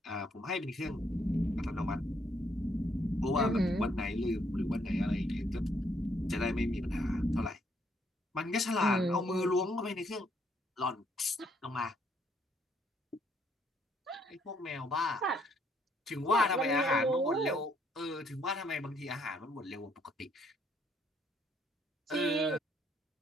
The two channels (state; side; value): normal; both; correlation 0.70